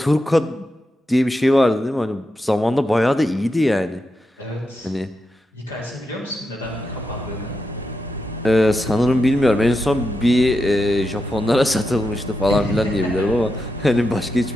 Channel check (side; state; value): both; normal; correlation 0.86